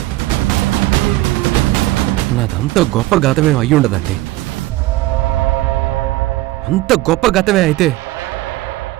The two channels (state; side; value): quieter; left; 17.7 dB